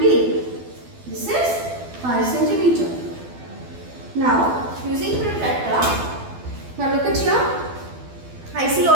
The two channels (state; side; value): late; left; 12 ms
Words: This is 5 centimeter. Now, using protractor, now look at here. I see